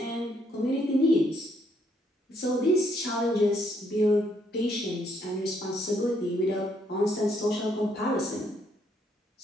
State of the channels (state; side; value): normal; both; correlation 0.71